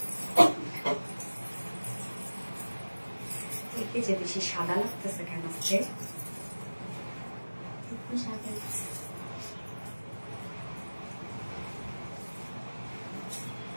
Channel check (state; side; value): inverted; both; correlation -1.00